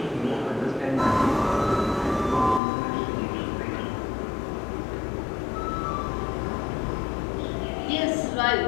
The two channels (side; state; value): right; drops out; at 2.6 s